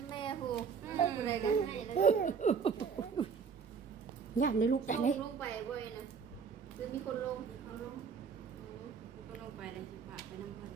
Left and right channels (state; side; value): quieter; left; 6.1 dB